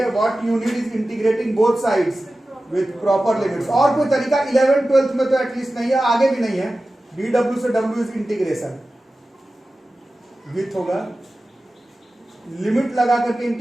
what you need is integrating both sides with proper limits. और कोई तरीका 11th 12th में तो एटलीस्ट नहीं है, आगे भी नहीं है। dw से w इज इंटीग्रेशन विथ होगा, लिमिट लगा करके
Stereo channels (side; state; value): both; normal; correlation 0.95